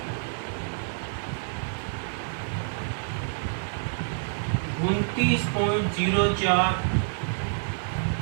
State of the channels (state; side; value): silent; left; 56 dB below the other